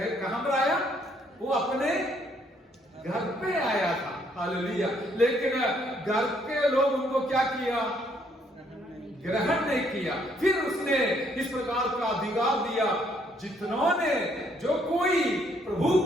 कहां पर आया? वो अपने घर पे आया था। हालेलुया। लेकिन घर के लोग उनको क्या किया? ग्रहण नहीं किया। फिर उसने इस प्रकार का अधिकार दिया, जितनों ने, जो कोई प्रभु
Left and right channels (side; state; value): both; normal; correlation 0.68